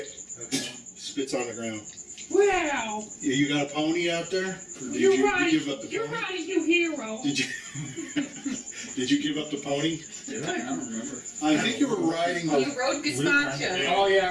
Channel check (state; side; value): identical; both; correlation 1.00